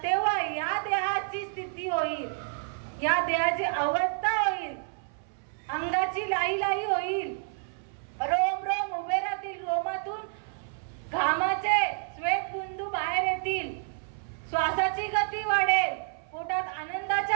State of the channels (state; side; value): silent; left; 58 dB below the other